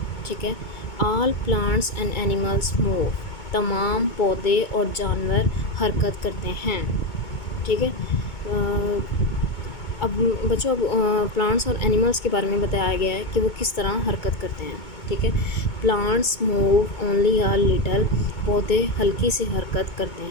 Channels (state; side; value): late; right; 2.2 ms